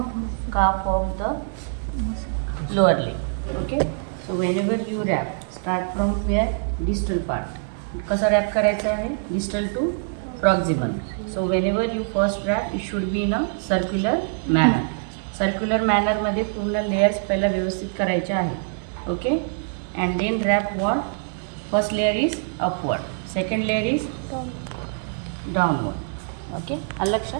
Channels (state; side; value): silent; left; digital silence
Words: calf of the lower leg. Okay, so whenever you wrap start from where distal part. कसं wrap करायचं आहे distal to proximal. So whenever you first wrap it should be in a circular manner. Circular मॅनरमध्ये पूर्ण layers पहिला व्यवस्थित करायचे आहे. Okay, and then wrap what. First layer is upward, second layer is downward. Okay, आलं